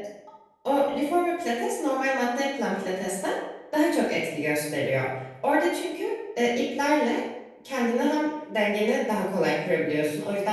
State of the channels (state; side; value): identical; both; correlation 1.00